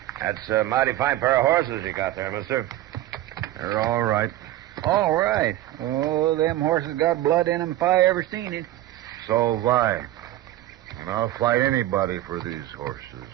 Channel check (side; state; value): left; quieter; 14.5 dB